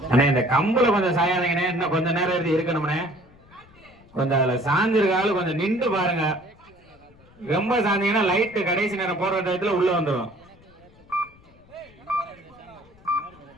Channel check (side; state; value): left; noise; rumble, 27 dB below the sound